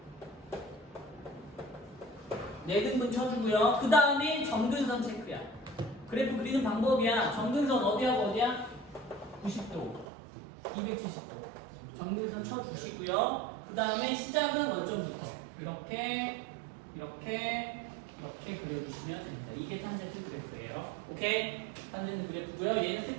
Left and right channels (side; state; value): left; drops out; at 10.1 s